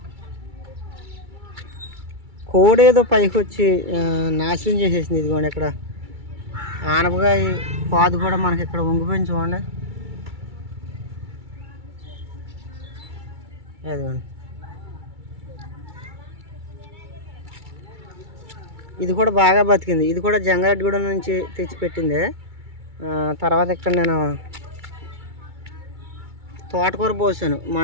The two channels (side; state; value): left; late; 2.3 ms